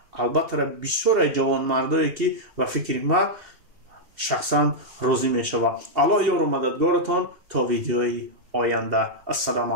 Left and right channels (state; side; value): late; left; 2.7 ms